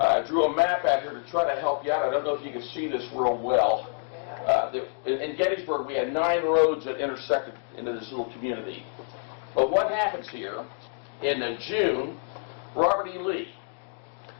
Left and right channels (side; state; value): right; silent; 60 dB below the other